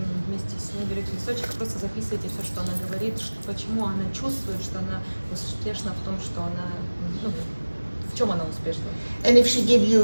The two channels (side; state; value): both; inverted; correlation -1.00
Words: вместе с ней берете листочек, просто записывайте все, что она говорит, почему она чувствует, что она успешна в том, что она, ну, в чем она успешна. And if she give